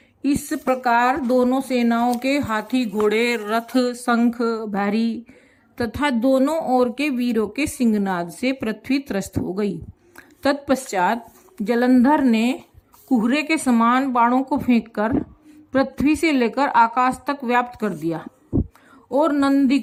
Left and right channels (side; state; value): both; identical; correlation 1.00